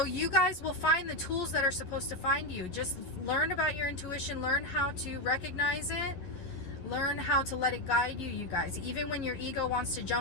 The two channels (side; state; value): right; late; 11 ms